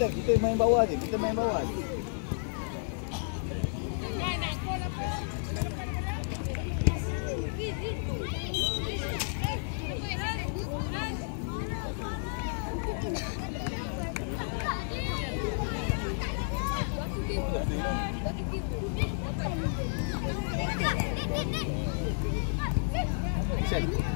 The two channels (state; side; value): silent; right; digital silence